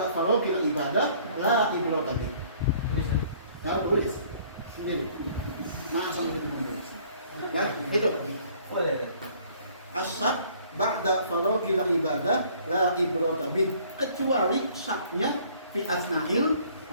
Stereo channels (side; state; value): both; inverted; correlation -0.57